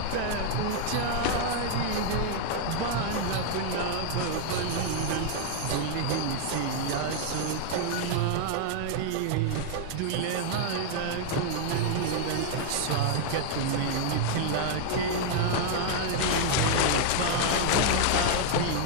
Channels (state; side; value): different; both; correlation 0.00